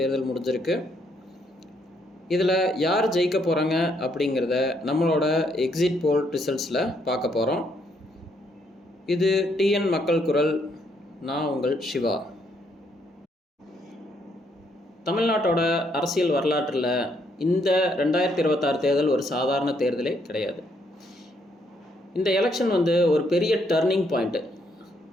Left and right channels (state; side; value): normal; both; correlation 0.72